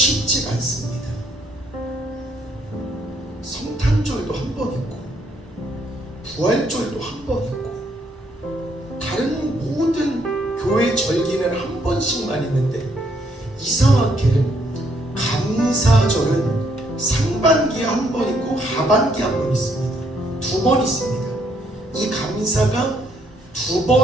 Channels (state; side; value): normal; both; correlation 0.70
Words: 않습니다. 성탄절도 한 번 있고 부활절도 한 번 있고 다른 모든 교회 절기는 한 번씩만 있는데, 이상하게 감사절은 상반기에 한 번 있고 하반기에 한 번 있습니다. 두 번 있습니다. 이 감사가 두